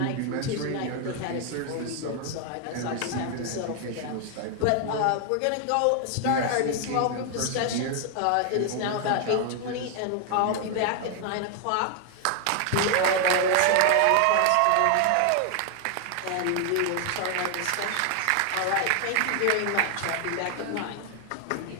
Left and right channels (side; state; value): both; different; correlation 0.00